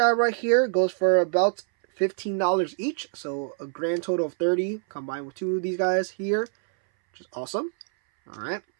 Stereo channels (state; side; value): silent; left; 61 dB below the other